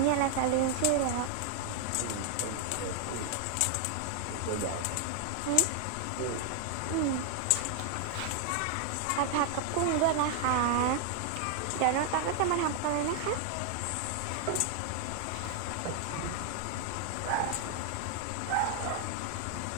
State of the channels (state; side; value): different; both; correlation 0.00